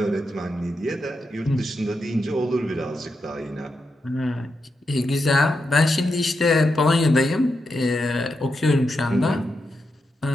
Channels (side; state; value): both; normal; correlation 0.86